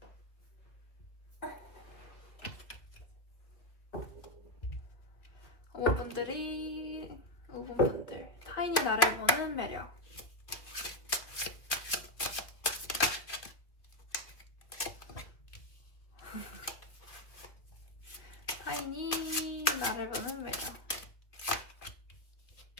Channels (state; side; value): late; right; 2.3 ms